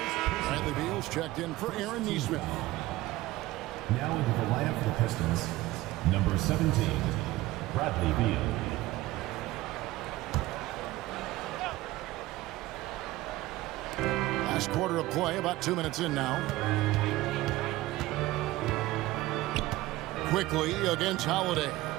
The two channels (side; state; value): left; quieter; 17.7 dB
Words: Bradley Beal's checked in for Aaron Nesmith. Now into the lineup for the Pistons, number 17, Bradley Beal. Last quarter of play, about 2 minutes in now. Quickly against Holiday.